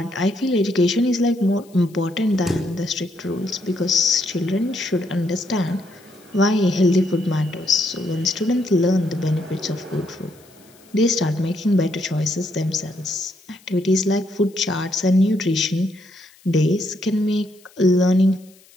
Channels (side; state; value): left; noise; hiss, 28 dB below the sound